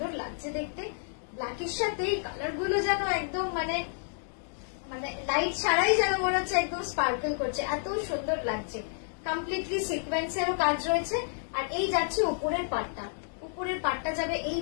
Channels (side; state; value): right; silent; digital silence